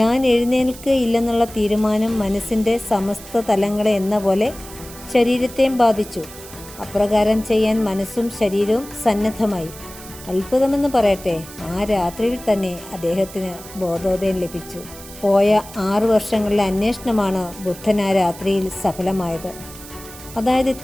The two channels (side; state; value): right; noise; hiss, 16 dB below the sound